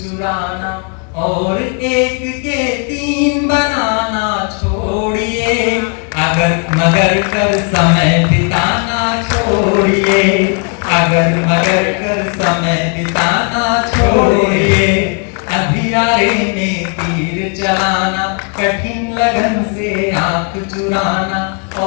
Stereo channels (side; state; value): right; quieter; 38.3 dB